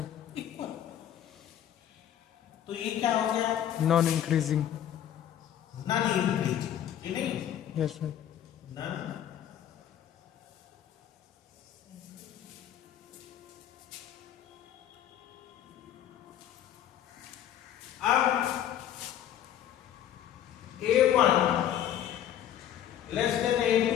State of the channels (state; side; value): quieter; right; 10.6 dB